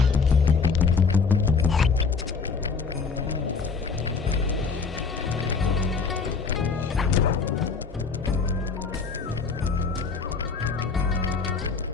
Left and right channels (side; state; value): right; quieter; 5.1 dB